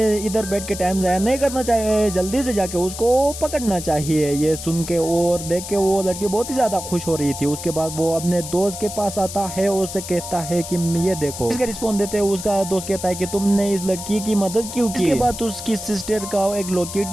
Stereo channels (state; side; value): noise; left; hiss, 9 dB below the sound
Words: इधर बैठ के टाइम जाया नहीं करना चाहिए, जल्दी से जाके उसको पकड़ना चाहिए। ये सुन के और देख के वो लड़की बहुत ही ज्यादा खुश हो रही थी। उसके बाद वो अपने दोस्त के पास आता है और उससे कहता है कि ये देखो। इसका रिस्पॉन्स देते हुए उसका दोस्त कहता है कि तुमने इस लड़की की मदद क्यों की। इसके बाद उसकी सिस्टर का एक लॉकेट